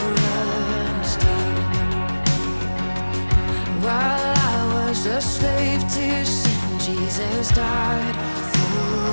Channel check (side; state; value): both; inverted; correlation -1.00